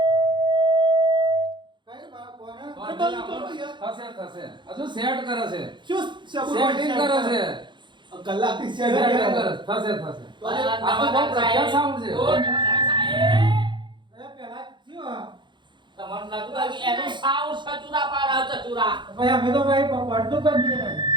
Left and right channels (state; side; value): late; left; 0.23 ms